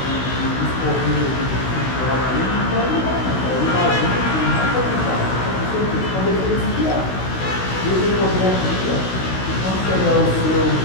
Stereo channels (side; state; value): right; late; 16 ms